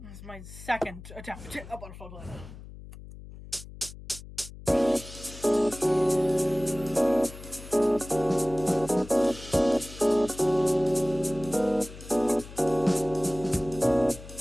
This is my second attempt at Butterfly Planet.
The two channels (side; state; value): left; noise; hum, 15 dB below the sound